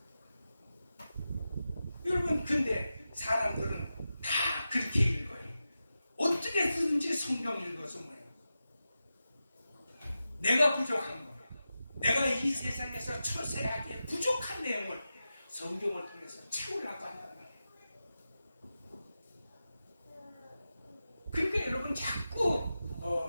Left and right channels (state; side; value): inverted; both; correlation -0.92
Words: 여러분, 근데 사람들은 다 그렇게 읽어요. 어떻게든지 성경 읽어서 뭐예요? 내가 부족한 거, 내가 이 세상에서 처세하기에 부족한 내용을 성경을 통해서 채우려고 한단 말이에요. 그러니까 여러분, 자꾸